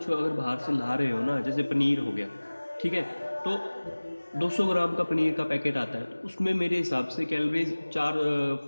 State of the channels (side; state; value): both; inverted; correlation -1.00